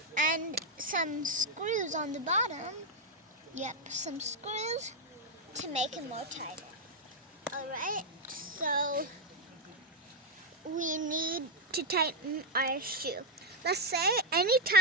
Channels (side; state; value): both; normal; correlation 0.03